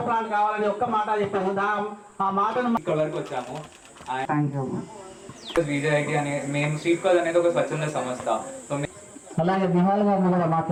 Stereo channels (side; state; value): both; identical; correlation 1.00